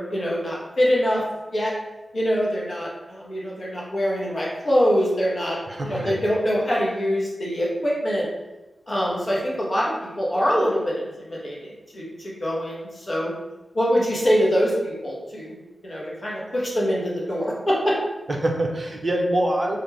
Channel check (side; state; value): both; normal; correlation 0.94